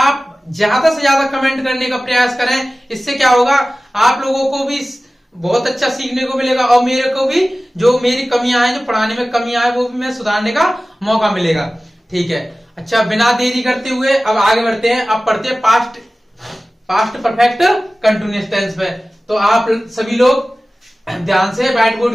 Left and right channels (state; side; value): normal; both; correlation 0.97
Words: ज्यादा से ज्यादा कमेंट करने का प्रयास करें। इससे क्या होगा, आप लोगों को भी बहुत अच्छा सीखने को मिलेगा और मेरे को भी जो मेरी कमियां हैं, जो पढ़ाने में कमियां हैं, वो भी मैं सुधारने का मौका मिलेगा। ठीक है, अच्छा बिना देरी करते हुए अब आगे बढ़ते हैं। अब पढ़ते हैं पास्ट परफेक्ट कंटिन्यूअस टेंस पे। तो आप सभी लोग ध्यान से व्हाइट